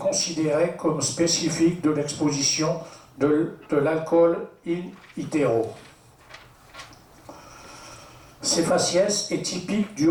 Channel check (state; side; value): identical; both; correlation 1.00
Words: comme spécifique de l'exposition de l'alcool in utero. Ces faciès est typique